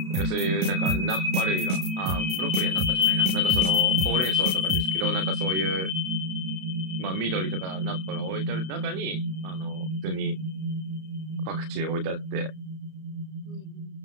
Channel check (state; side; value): late; left; 32 ms